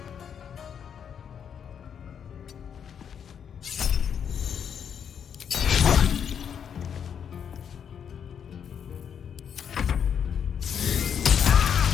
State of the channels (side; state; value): right; quieter; 7.9 dB